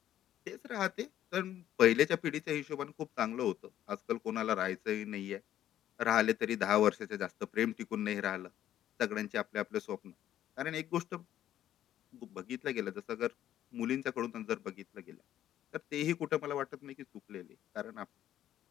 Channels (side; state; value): right; quieter; 11.8 dB